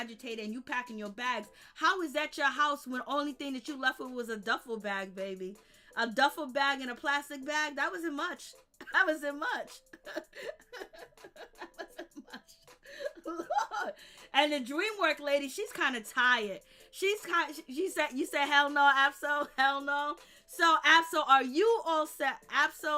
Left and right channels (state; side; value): identical; both; correlation 1.00